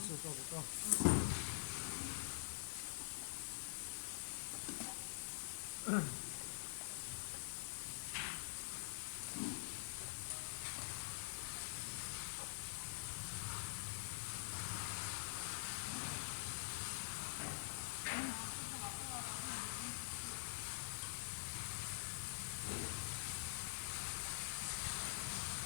数够不够。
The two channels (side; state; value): right; silent; digital silence